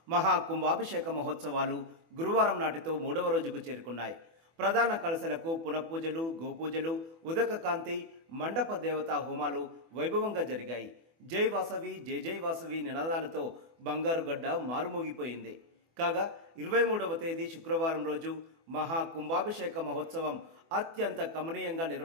మహా కుంభాభిషేక మహోత్సవాలు గురువారం నాటితో 3వ రోజుకు చేరుకున్నాయి. ప్రధాన కలశలకు పునఃపూజలు, గోపూజలు, ఉదక కాంతి, మండప దేవతా హోమాలు వైభవంగా జరిగాయి. జై వాసవి, జై జై వాసవి నినాదాలతో బంగారుగడ్డ మారుమోగిపోయింది. కాగా 23వ తేదీ శుక్రవారం రోజు మహా కుంభాభిషేక మహోత్సవం అత్యంత కమనీయంగా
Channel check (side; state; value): left; late; 24 ms